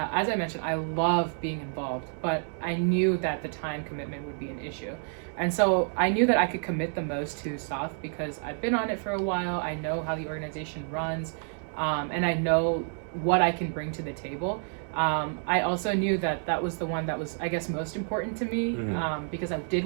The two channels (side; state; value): left; silent; 57 dB below the other